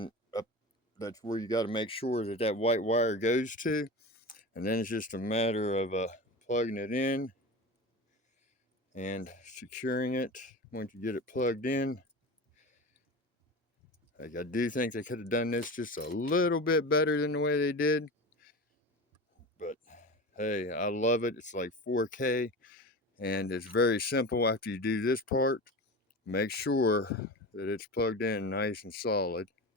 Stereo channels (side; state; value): both; normal; correlation 0.29